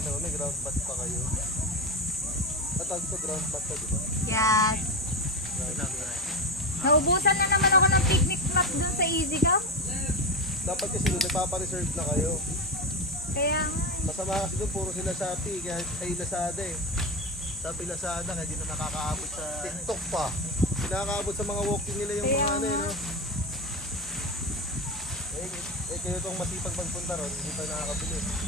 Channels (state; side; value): normal; both; correlation 0.18